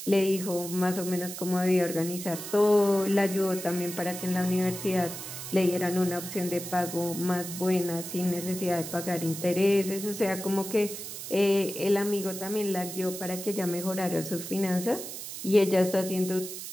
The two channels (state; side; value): noise; right; hiss, 9 dB below the sound